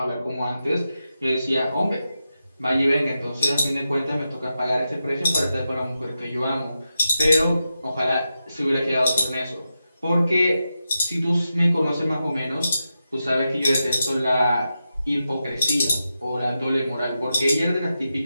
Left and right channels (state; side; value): inverted; both; correlation -0.89